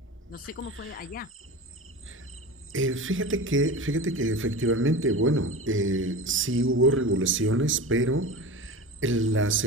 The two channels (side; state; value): both; normal; correlation 0.30